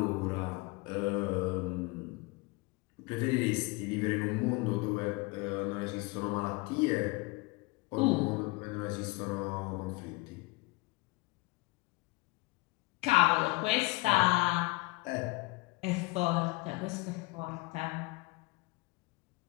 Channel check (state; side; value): quieter; right; 24.9 dB